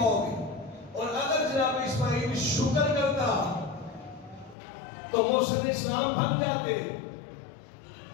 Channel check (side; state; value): right; drops out; at 4.5 s